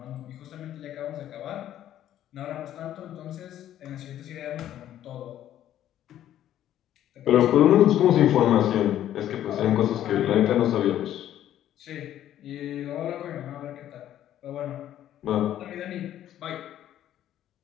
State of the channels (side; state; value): right; quieter; 11.8 dB